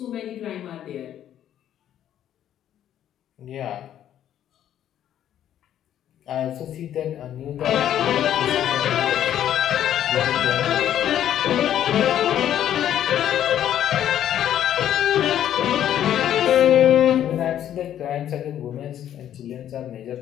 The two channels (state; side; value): quieter; right; 10.9 dB